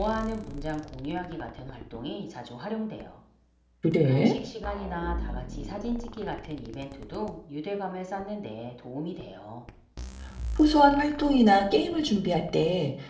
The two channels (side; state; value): both; identical; correlation 1.00